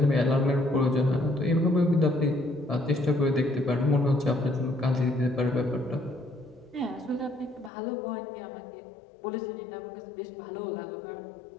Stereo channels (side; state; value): right; drops out; at 7.7 s